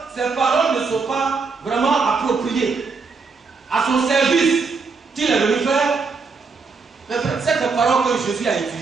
que ses paroles ne sont pas vraiment appropriées à son service qu'il est venu faire, mais cette parole que Jésus a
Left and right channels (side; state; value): left; quieter; 4.7 dB